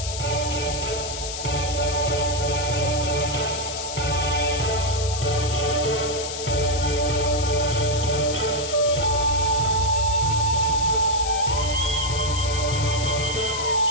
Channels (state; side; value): noise; left; hiss, 7 dB below the sound